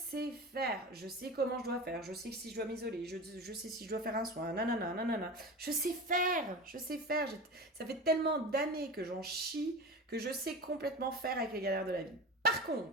faire, je sais comment je dois faire, je sais si je dois m'isoler, je sais si je dois faire un soin, nanana, nanana. Je sais faire. Ça fait tellement d'années que j'en chie que je sais complètement faire avec les galères de la vie. Par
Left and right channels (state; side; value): normal; both; correlation 0.30